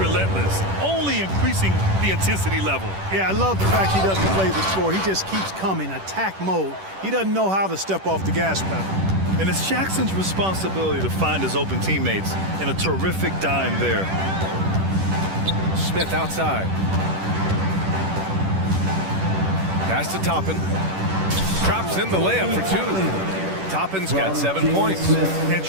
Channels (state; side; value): late; left; 10 ms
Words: only increasing the intensity level. Yeah, I love the fact he doesn't play the score. He just keeps coming, attack mode. He doesn't know how to step off the gas pedal. And it's Jackson's responsibility to find his open teammates, and a terrific dime there. Smith outside. Pass to Toppin. Drops in the layup for 2. Toppin's got 7 points. And